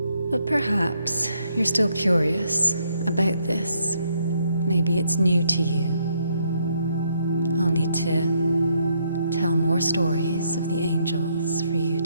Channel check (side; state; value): both; inverted; correlation -0.73